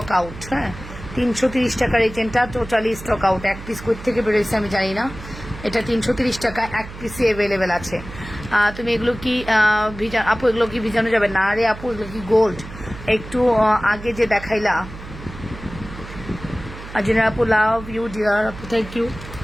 আউট। হ্যাঁ, 330 টাকার এই চেনটা টোটালি স্টক আউট। এক পিস কোথা থেকে বেরোয়েছে আমি জানি না। এটা 330 টাকা, এক পিসে অ্যাভেলেবেল আছে। তুমি এগুলো কি আপু, এগুলো কি ভিজানো যাবে? না রে আপু, এগুলো কি গোল্ড? একটু আগে যে দেখাইলা। আজিনা আপু, লাভ ইউ ডিয়ার আপু, থ্যাংক ইউ।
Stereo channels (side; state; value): right; noise; hum, 13 dB below the sound